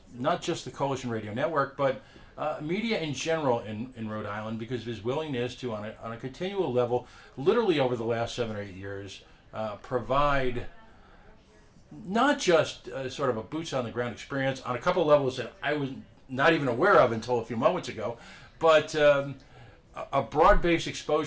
not just the Coalition Radio Network, but media in general in Rhode Island because of his willingness to, on a continual level, literally over the last 7 or 8 years, provide not just sort of a boots on the ground experience on a couple of levels that I was not even aware of until a few moments ago, but a broad-based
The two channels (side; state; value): both; identical; correlation 1.00